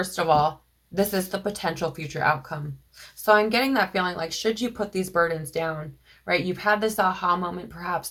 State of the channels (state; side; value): identical; both; correlation 1.00